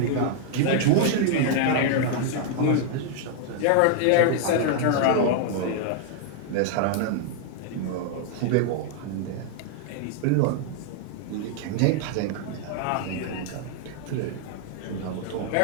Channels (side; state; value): both; different; correlation 0.00